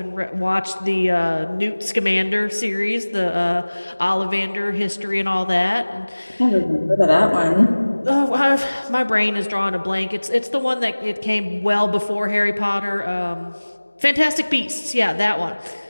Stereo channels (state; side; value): inverted; both; correlation -1.00